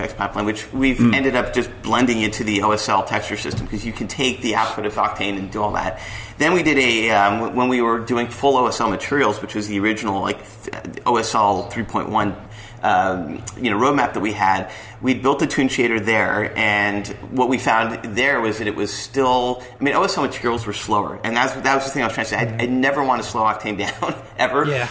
pipeline, which we've ended up just blending into the OSL texture system because you can take the output of Octane and do all that. Then we did when we were doing full OSL materials, which was the original OSL 3.1 roadmap that we had. We built a Tune Shader there, and what we found there was that it was still, OSL materials were slower, and that was the thing I was trying to say. I never want to slow Octane down, ever. Yeah.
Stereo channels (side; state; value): both; identical; correlation 1.00